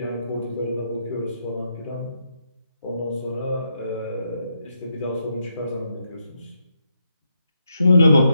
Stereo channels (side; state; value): both; inverted; correlation -0.80